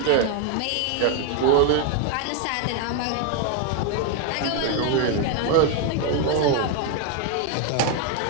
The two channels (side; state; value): both; different; correlation 0.01